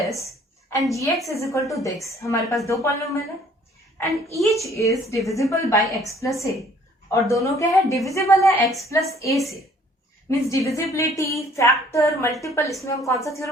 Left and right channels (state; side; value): normal; both; correlation 0.58